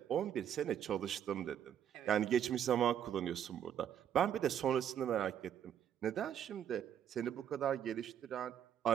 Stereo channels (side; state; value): left; quieter; 9.4 dB